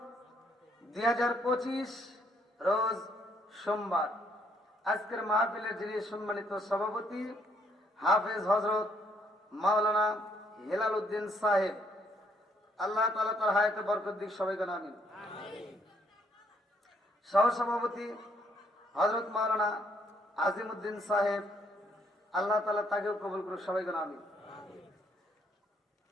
2025, রোজ সোমবার। আজকের মাহফিলের যিনি সম্মানিত সভাপতি হাফেজ হযরত মাওলানা হেলাল উদ্দিন সাহেব, আল্লাহ তাআলা তার হায়াতে বরকত দিক, সবাই বলেন আমিন। সহসভাপতি হযরত মাওলানা আজিমউদ্দিন সাহেব, আল্লাহ তাআলা তাকেও কবুল করুক, সবাই বলেন আমিন।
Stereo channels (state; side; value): normal; both; correlation 0.69